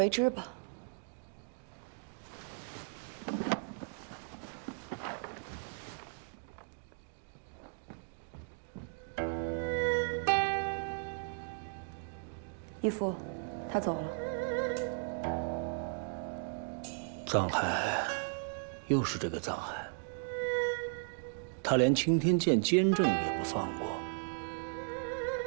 之吧。义父，他走了。藏海，又是这个藏海。他连青天剑监正也不放过。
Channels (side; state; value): left; silent; 54 dB below the other